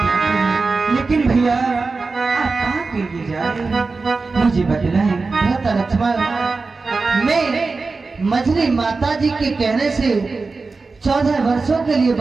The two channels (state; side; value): quieter; left; 4.0 dB